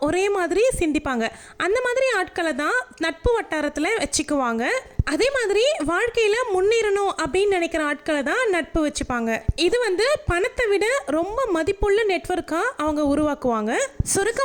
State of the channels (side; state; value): both; identical; correlation 1.00